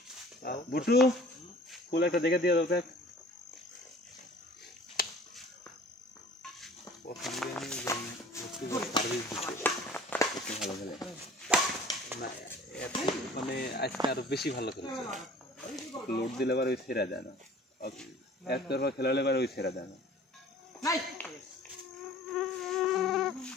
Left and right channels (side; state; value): both; normal; correlation 0.47